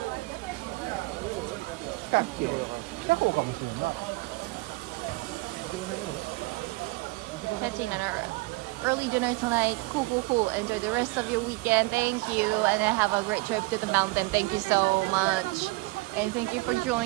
Catching an early dinner tonight. Cool. Enjoy the rest of your weekend. Thank you, and then have a great trip to the mountain. Thank you so much, and thank you for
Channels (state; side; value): quieter; left; 23.6 dB